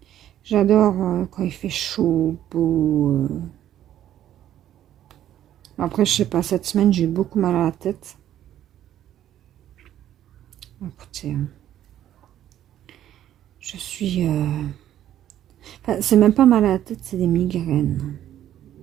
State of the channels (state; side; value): quieter; left; 11.6 dB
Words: J'adore quand il fait chaud, beau. Après, je sais pas, cette semaine, j'ai eu beaucoup mal à la tête. Écoutez, je suis... Enfin, c'est même pas mal à la tête, c'est des migraines.